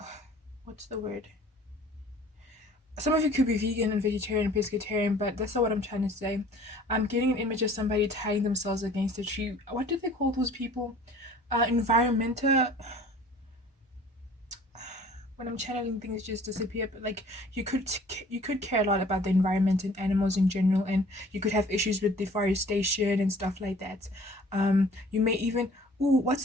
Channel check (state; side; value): normal; both; correlation 0.51